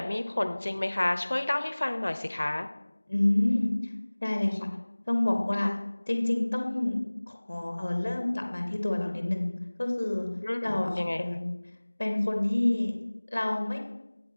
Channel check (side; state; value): both; inverted; correlation -1.00